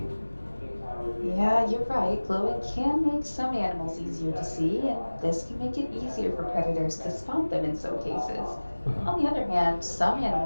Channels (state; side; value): inverted; both; correlation -1.00